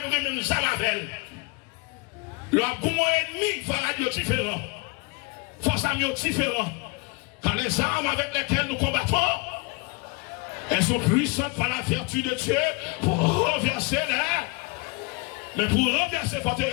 nous même Zamavel. Le bon ennemi va radio différent. Force à mieux différent. Car les armes avec lesquelles nous combattons, elles sont puissantes par la vertu de Dieu pour renverser les. Mais pour renverser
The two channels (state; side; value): quieter; right; 28.4 dB